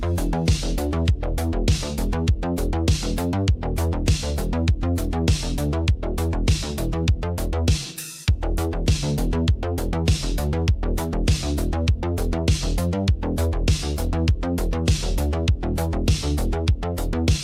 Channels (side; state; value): both; identical; correlation 1.00